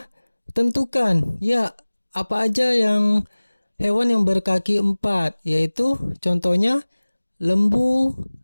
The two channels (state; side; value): inverted; both; correlation -1.00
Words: tentukan. Ya, apa aja yang hewan yang berkaki 4, yaitu contohnya lembu,